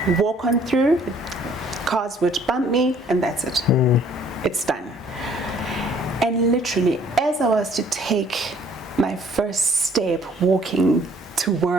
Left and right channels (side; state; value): both; normal; correlation 0.59